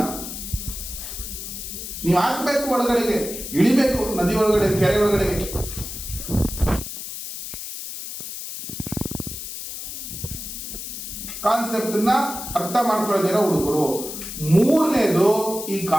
ನೀವು ಹಾಕ್ಬೇಕು, ಒಳಗಡೆಗೆ ಇಳಿಬೇಕು, ನದಿ ಒಳಗಡೆ, ಕೆರೆ ಒಳಗಡೆಗೆ. ಕಾನ್ಸೆಪ್ಟ್ ನ ಅರ್ಥ ಮಾಡ್ಕೊಳ್ಳೋದಿರೋ ಹುಡುಗರು. ಮೂರನೇದು, ಈ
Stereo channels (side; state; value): left; noise; hiss, 8 dB below the sound